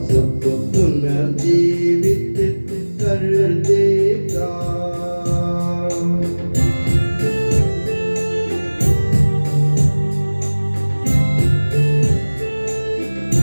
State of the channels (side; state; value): both; inverted; correlation -1.00